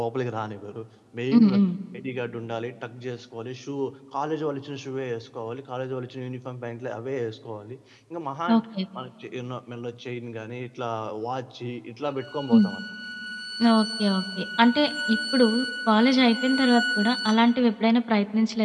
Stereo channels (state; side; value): identical; both; correlation 1.00